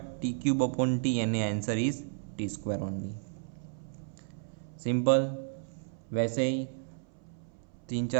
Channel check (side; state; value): left; silent; 56 dB below the other